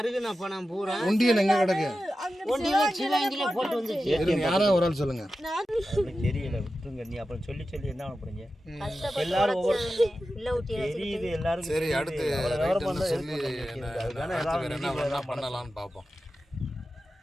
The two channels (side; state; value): both; normal; correlation 0.92